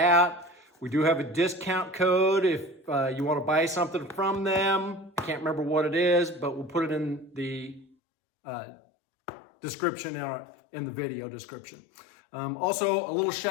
We do have a discount code if you want to buy something from them. Can't remember what it is, but we'll put it in the description in the video description. Also, a little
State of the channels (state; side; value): drops out; right; at 7.9 s